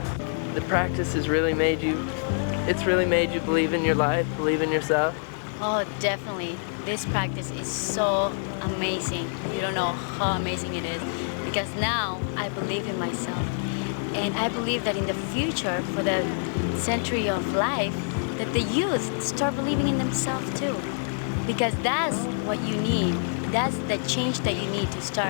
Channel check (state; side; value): silent; right; digital silence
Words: The practice has really made you, it's really made you believe in your life, believe in yourself? Oh, definitely. This practice is so amazing. You don't know how amazing it is, because now I believe in myself. And I believe that in the future, for the century of life, that the youth start believing in themselves too. Because that's what you need. That's the change that you need to